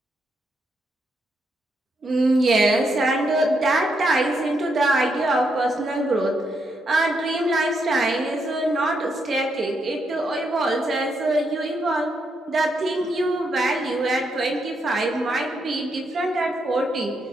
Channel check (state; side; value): normal; both; correlation 0.79